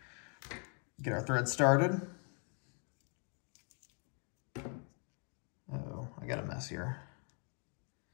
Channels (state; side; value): quieter; right; 39.8 dB